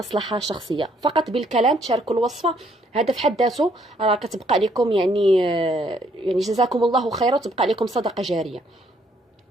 شخصية، فقط بالكلام تشاركوا الوصفة. هذا في حد ذاته راه كتبقى لكم يعني جزاكم الله خيرا، وتبقى لكم صدقة جارية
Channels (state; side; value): normal; both; correlation 0.68